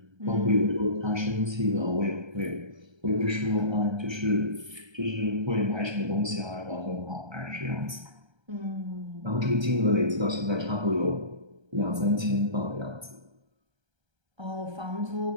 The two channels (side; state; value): left; late; 1.3 ms